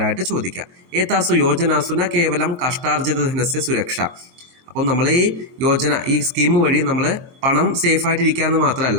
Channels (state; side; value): late; left; 22 ms